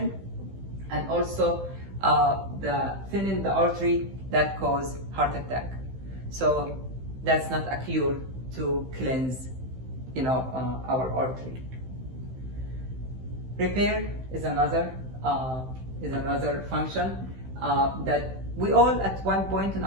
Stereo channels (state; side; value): late; left; 15 ms